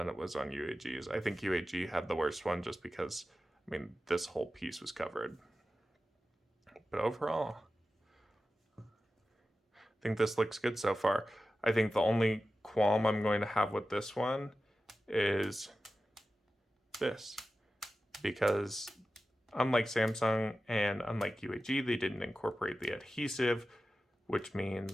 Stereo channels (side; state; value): both; normal; correlation 0.94